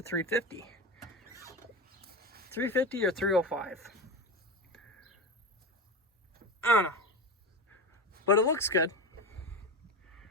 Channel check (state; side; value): normal; both; correlation 0.23